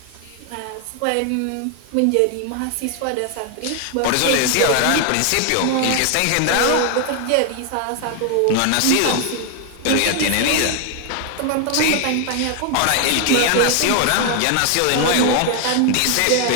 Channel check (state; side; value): different; both; correlation 0.00